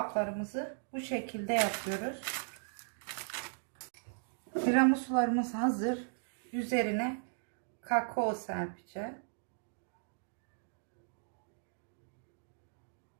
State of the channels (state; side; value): silent; left; digital silence